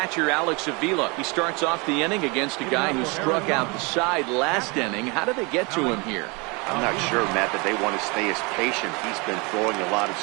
Alex Avila. He starts off the inning against a guy who struck out the side last inning. How did they get to him here? I'm not sure, Matt, that they want to stay as patient. He's been throwing a lot of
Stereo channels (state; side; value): quieter; left; 28.7 dB